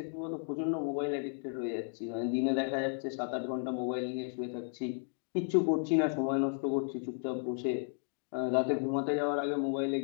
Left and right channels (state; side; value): silent; right; 55 dB below the other